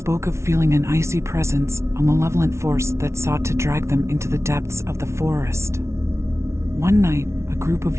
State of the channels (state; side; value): late; left; 0.13 ms